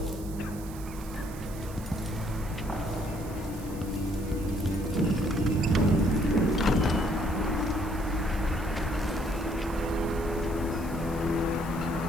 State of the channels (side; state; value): right; noise; hiss, 18 dB below the sound